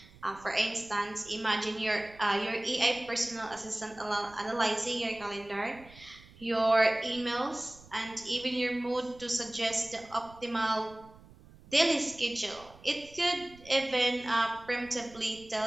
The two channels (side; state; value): right; noise; rumble, 22 dB below the sound